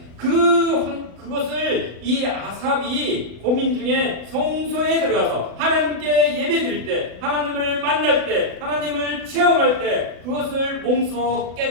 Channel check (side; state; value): left; late; 36 ms